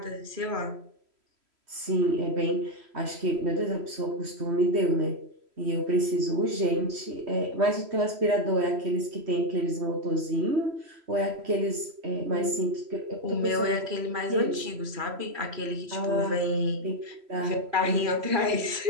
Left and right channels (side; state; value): left; late; 3.0 ms